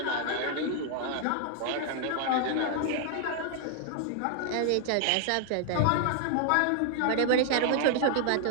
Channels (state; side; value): different; both; correlation 0.00